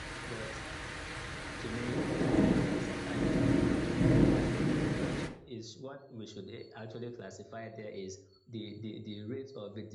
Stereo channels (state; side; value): identical; both; correlation 1.00